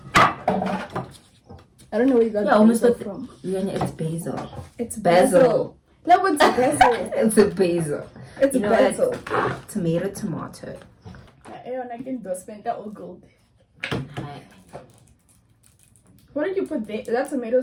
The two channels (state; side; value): identical; both; correlation 1.00